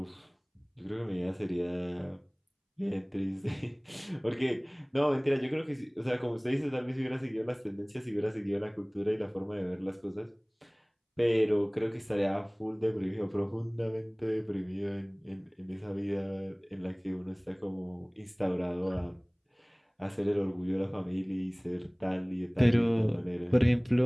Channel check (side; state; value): both; identical; correlation 1.00